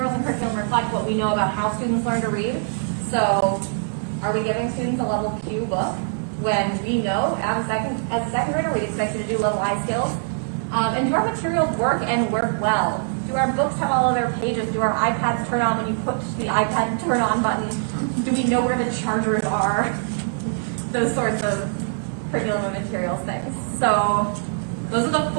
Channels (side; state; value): left; silent; digital silence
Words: and curriculum reflect what we know about how students learn to read. So are we giving students a level Q book when we know as a second grader we expect you to do level I skills? And do our materials work and work well? Do our books have all of their pages? Do our iPads turn on when you push the iPad turn on button? Do we know where the chargers are? Those sorts of curriculum and materials things. So those are the